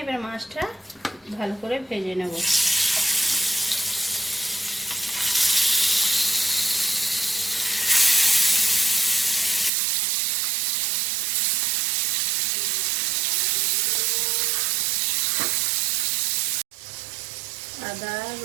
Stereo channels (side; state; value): left; drops out; at 9.7 s